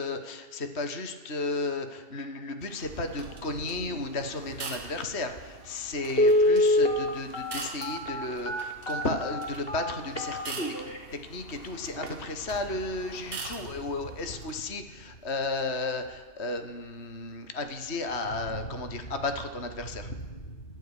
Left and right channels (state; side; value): late; right; 3.1 ms